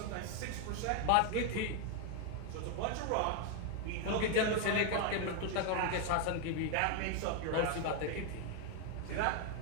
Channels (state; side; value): different; both; correlation 0.01